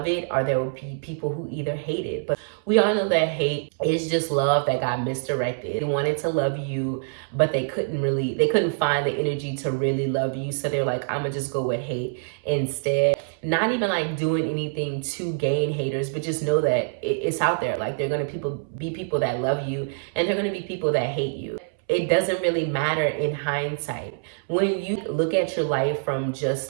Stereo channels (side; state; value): left; silent; 62 dB below the other